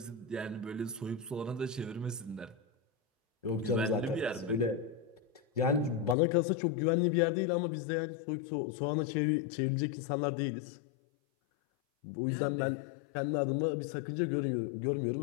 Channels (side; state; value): right; drops out; at 6.2 s